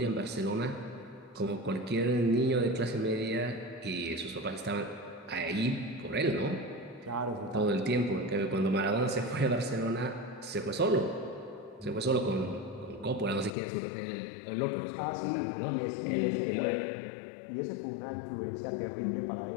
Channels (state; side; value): drops out; right; at 13.6 s